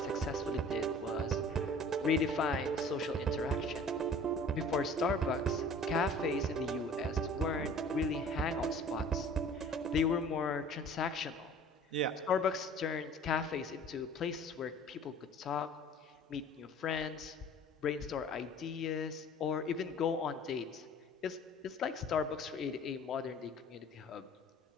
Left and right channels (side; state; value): both; normal; correlation 0.47